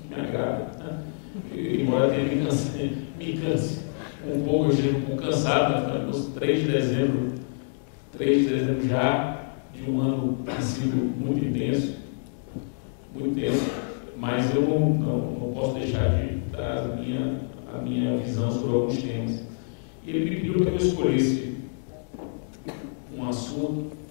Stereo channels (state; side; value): silent; right; digital silence